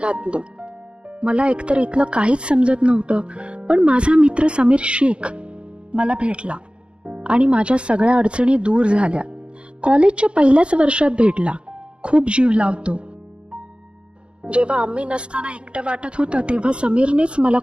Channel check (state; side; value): late; left; 0.057 ms